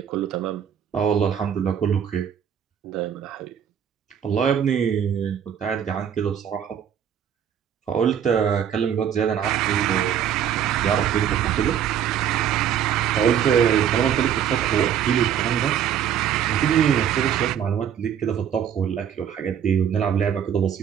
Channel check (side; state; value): left; quieter; 9.0 dB